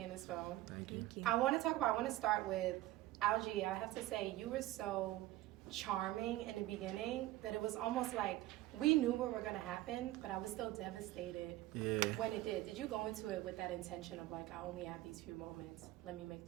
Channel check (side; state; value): left; quieter; 16.4 dB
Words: this film. Thank you. Thank you. I want to start with Algee. I have to say, you were so charming in the beginning that it was almost like we knew what were going to happen, but I was still devastated when it did. Did you go into it with that intention of like, I only have these few moments, let me make